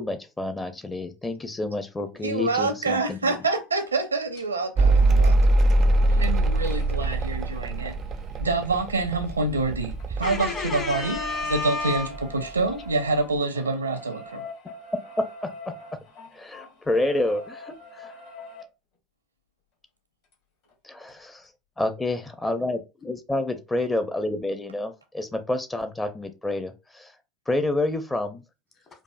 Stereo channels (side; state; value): both; normal; correlation 0.39